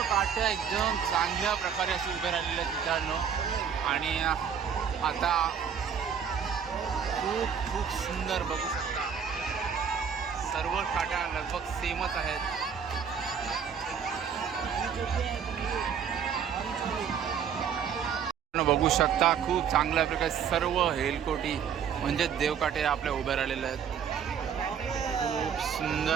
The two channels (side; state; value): left; quieter; 7.5 dB